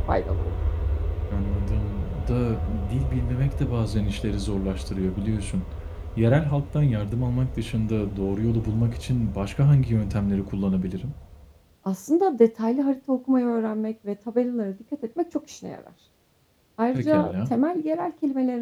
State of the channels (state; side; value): identical; both; correlation 1.00